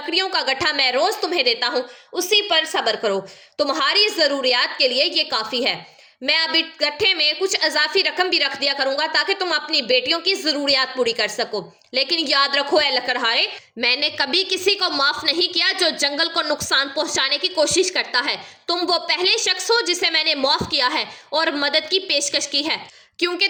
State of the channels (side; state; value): both; identical; correlation 1.00